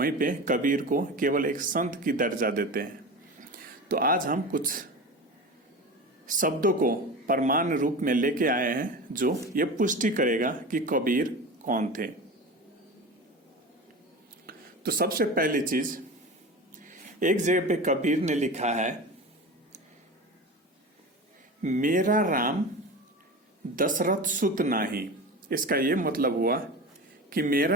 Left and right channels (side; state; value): both; normal; correlation 0.30